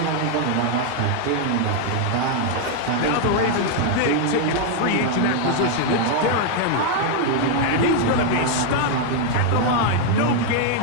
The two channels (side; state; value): both; different; correlation 0.00